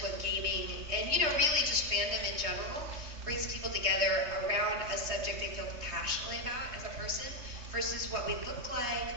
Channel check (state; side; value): late; left; 3.3 ms